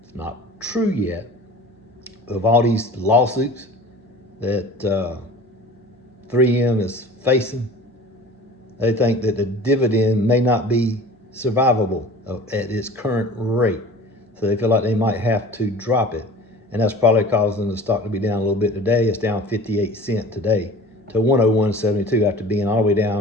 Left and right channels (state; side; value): normal; both; correlation 0.42